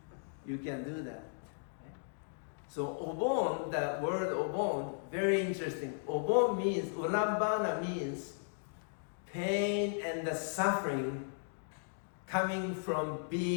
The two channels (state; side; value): silent; right; digital silence